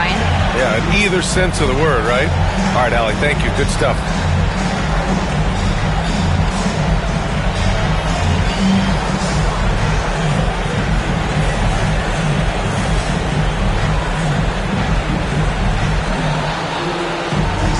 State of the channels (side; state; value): both; identical; correlation 1.00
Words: Yeah, in either sense of the word, right? All right, Allie, thank you. Good stuff.